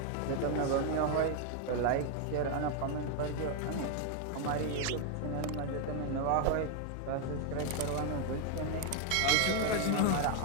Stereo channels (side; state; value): both; different; correlation 0.01